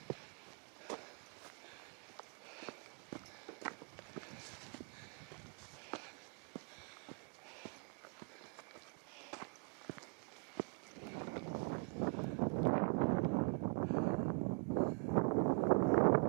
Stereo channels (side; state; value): left; quieter; 35.1 dB